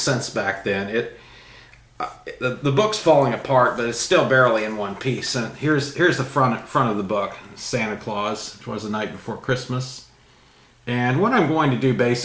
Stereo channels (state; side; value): identical; both; correlation 1.00